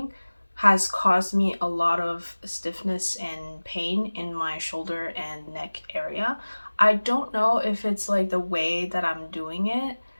has caused me a lot of stiffness and pain in my shoulder and neck area. I don't know if it's like the way that I'm doing it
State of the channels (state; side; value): inverted; both; correlation -1.00